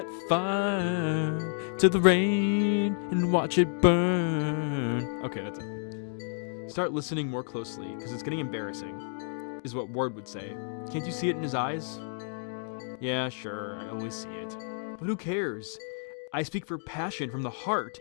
fire to the rain and watch it burn. Okay, that's it. Start listening more closely, because it's getting embarrassing, is what Ward would say. Can't you see it in his eyes? Yeah, sure, I always see it. But who cares? I speak for passion from the heart.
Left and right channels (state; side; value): silent; right; digital silence